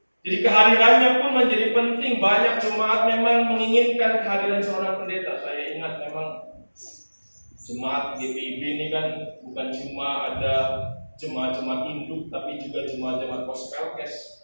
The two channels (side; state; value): both; inverted; correlation -1.00